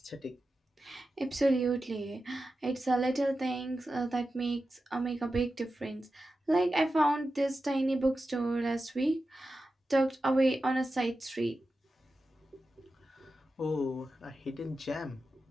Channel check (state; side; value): normal; both; correlation 0.92